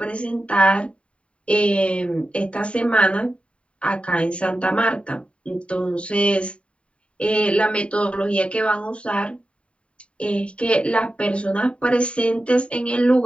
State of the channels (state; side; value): late; right; 0.060 ms